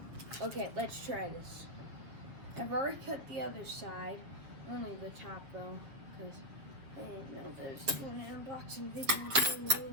Okay, let's try this. I've already cut the other side, only the top though, because I didn't know that I was doing an unboxing video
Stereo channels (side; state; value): left; late; 7.5 ms